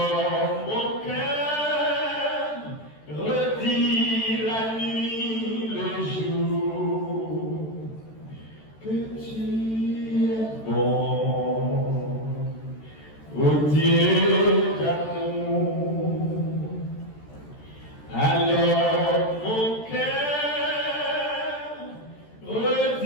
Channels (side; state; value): right; late; 13 ms